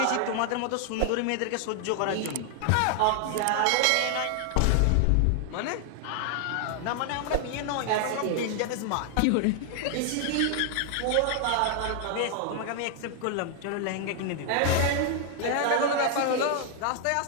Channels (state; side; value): different; both; correlation 0.00